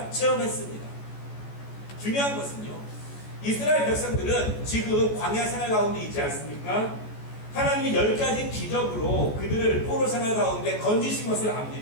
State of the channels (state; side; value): late; right; 14 ms